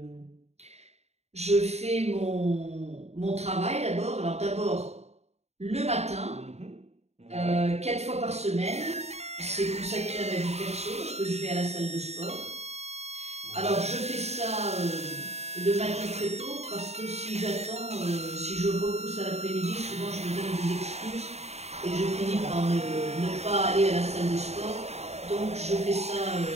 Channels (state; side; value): late; left; 0.31 ms